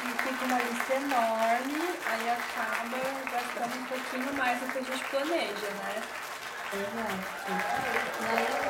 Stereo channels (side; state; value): both; identical; correlation 1.00